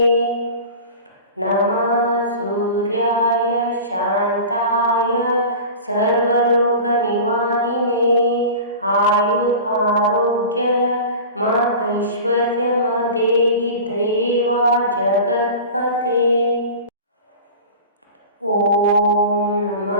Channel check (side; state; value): both; inverted; correlation -0.35